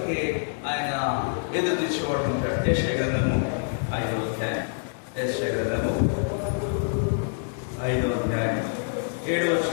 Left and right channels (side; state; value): right; silent; digital silence